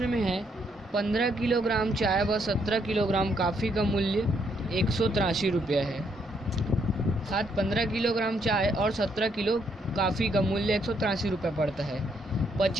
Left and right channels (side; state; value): both; normal; correlation 0.73